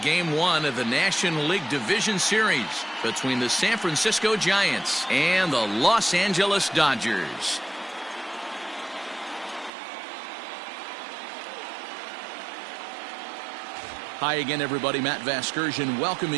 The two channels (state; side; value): drops out; left; at 9.7 s